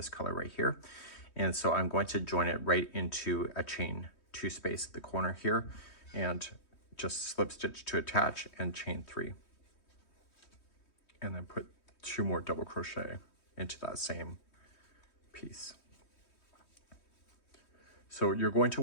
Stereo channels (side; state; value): right; late; 3.2 ms